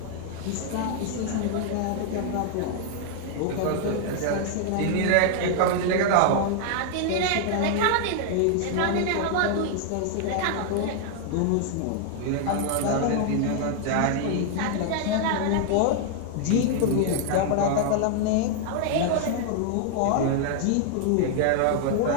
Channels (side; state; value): both; different; correlation 0.00